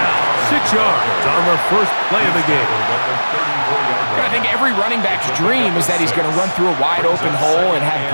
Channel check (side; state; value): both; inverted; correlation -1.00